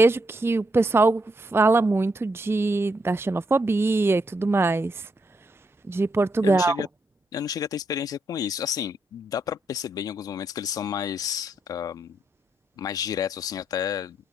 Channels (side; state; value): both; normal; correlation 0.78